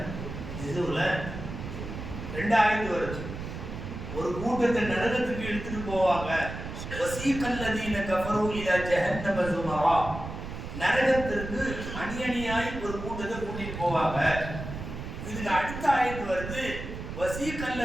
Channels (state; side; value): noise; right; rumble, 8 dB below the sound